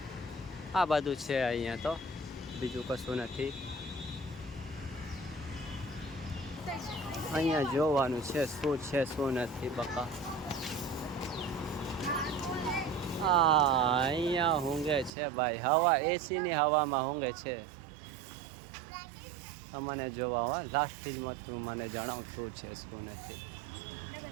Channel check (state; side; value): drops out; left; at 15.1 s